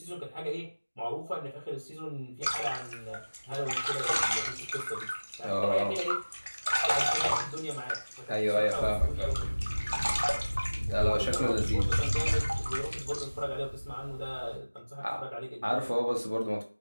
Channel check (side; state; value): both; inverted; correlation -1.00